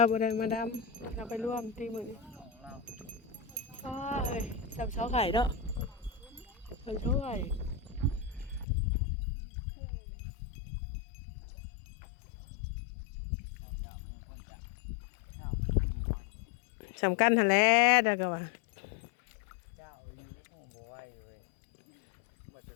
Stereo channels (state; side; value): drops out; right; at 8.7 s